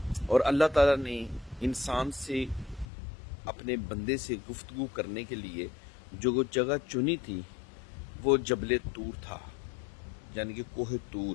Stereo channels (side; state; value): right; drops out; at 2.9 s